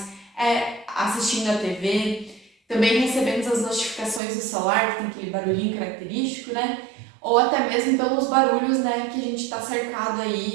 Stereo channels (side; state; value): left; drops out; at 4.2 s